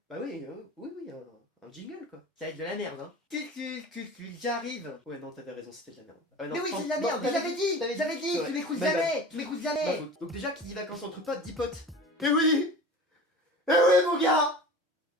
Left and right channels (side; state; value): both; normal; correlation 0.37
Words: Bah oui, oui, un jingle quoi. Ça va être de la merde, hein. J'arrive. Ouais non, t'avais raison, c'était de la merde. Mais Non, oui, c'est de la merde, mais j'avais dit, tu m'écoutes jamais, tu m'écoutes jamais. Donc déjà, qui dit vacances entre potes, dit potes. Eh oui! Eh oui mon gars!